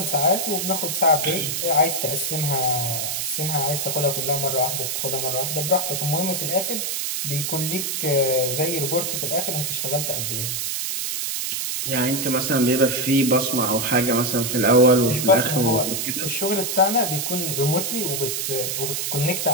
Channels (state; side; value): noise; right; hiss, 1 dB below the sound